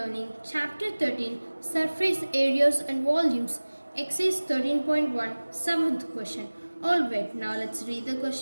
Chapter 13, Surface Areas and Volumes, Exercise 13.1, 7th question. Alright, now let's read the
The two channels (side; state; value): both; inverted; correlation -1.00